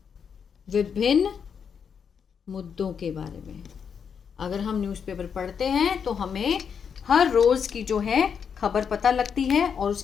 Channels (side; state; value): right; quieter; 6.9 dB